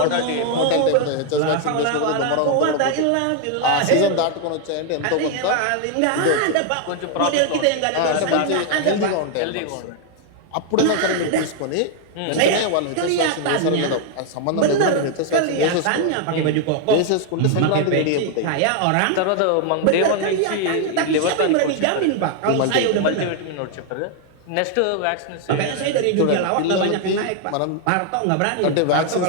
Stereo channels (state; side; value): different; both; correlation 0.00